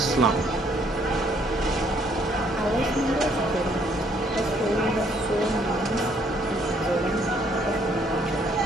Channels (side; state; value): both; normal; correlation 0.66